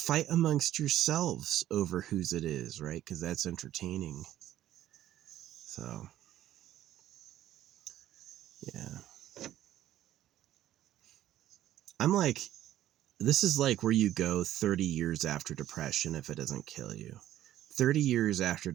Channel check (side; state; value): left; quieter; 13.0 dB